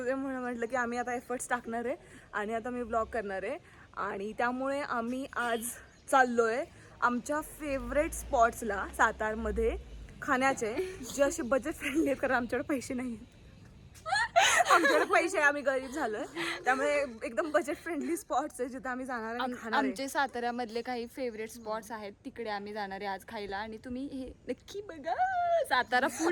म्हणून म्हटलं की आम्ही आता एफर्ट्स टाकणार आहे आणि आता मी ब्लॉग करणार आहे. आणि त्यामुळे आम्ही आज चाललोय आमच्या फेवरेट स्पॉट्सला सातारमध्ये खाण्याचे, जे असे बजेट फ्रेंडली आहेत कारण आमच्याकडे पैसे नाही आहेत. आमच्याकडे पैसे, आम्ही गरीब झालोय, त्यामुळे एकदम बजेट फ्रेंडली स्पॉट्स आहे जिथे आम्ही जाणार आहे खाणार आहे. आमचे साताऱ्यामधले काही फेवरेट स्पॉट्स आहेत, तिकडे आम्ही जाणार आहे आज खायला. आणि तुम्ही हे नक्की बघा सातारा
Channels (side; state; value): both; identical; correlation 1.00